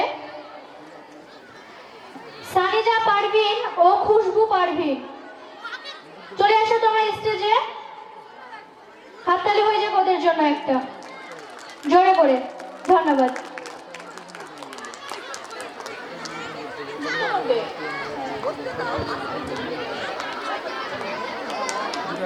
সানিজা পারভিন ও খুশবু পারভিন। চলে আসো তোমরা স্টেজে, হাততালি হয়ে যাক ওদের জন্য একটা জোরে করে। ধন্যবাদ।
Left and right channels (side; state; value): both; identical; correlation 1.00